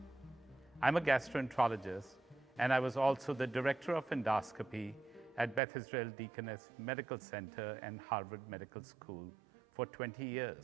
I'm a gastroenterologist, and I was also the Director of Endoscopy at Beth Israel Deaconess Medical Center and Harvard Medical School for 20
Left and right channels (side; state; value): left; drops out; at 5.6 s